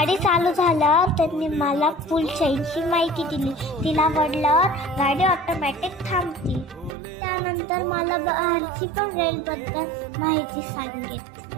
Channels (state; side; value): drops out; left; at 7.0 s